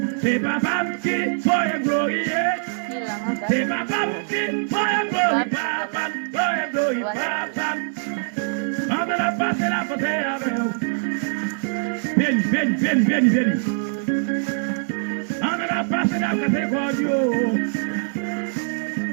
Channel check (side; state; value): left; silent; digital silence